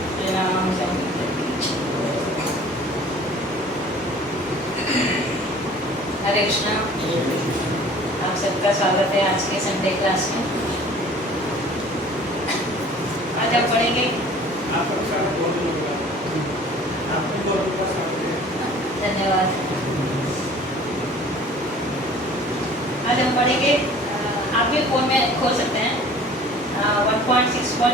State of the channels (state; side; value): normal; both; correlation 0.48